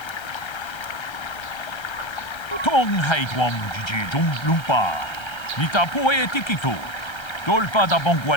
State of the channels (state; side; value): late; right; 1.3 ms